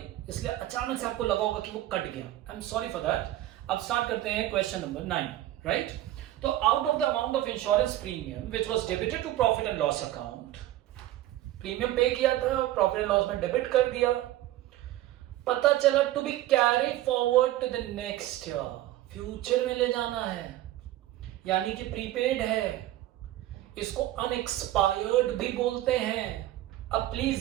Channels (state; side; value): quieter; left; 14.5 dB